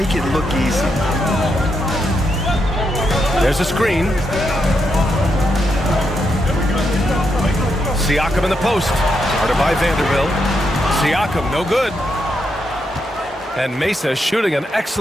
it look easy. There's a screen. Siakam in the post. Started by Vanderbilt. Siakam, no good. And Mesa shooting an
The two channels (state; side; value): normal; both; correlation 0.81